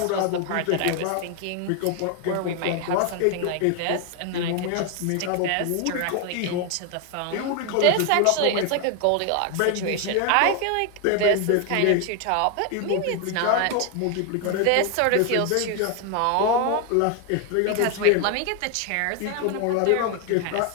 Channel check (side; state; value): both; different; correlation 0.01